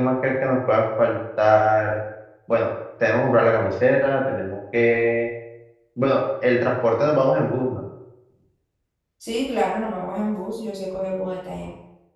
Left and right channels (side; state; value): both; identical; correlation 1.00